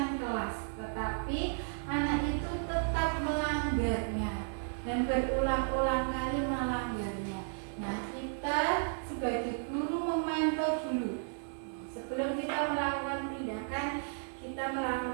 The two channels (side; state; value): left; silent; digital silence